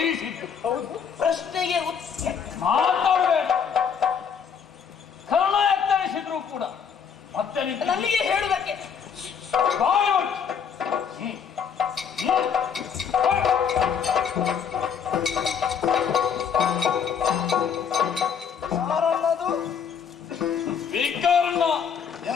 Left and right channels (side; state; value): right; quieter; 7.2 dB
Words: ಪ್ರಶ್ನೆಗೆ ಮಾತಾಡಬೇಡ. ಕರ್ಣ ಎತ್ತರಿಸಿದ್ರು ಕೂಡ ಮತ್ತೆ ನನಗೆ ಹೇಳುವುದಕ್ಕೆ ಬಾಯಿ ವಿಕರ್ಣ